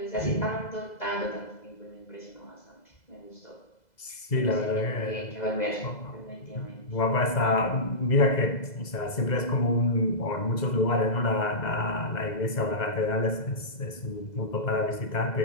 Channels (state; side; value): late; right; 2.0 ms